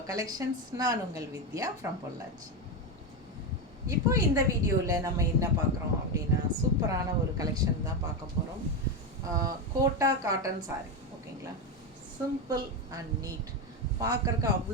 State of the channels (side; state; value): both; normal; correlation 0.12